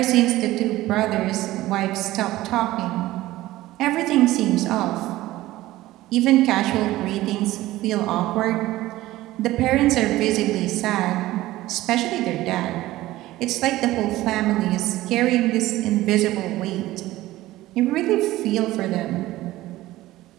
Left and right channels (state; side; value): quieter; left; 16.7 dB